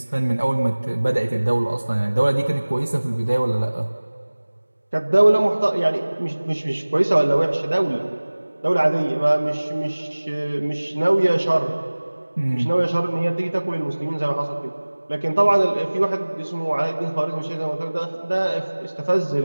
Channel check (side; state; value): both; inverted; correlation -1.00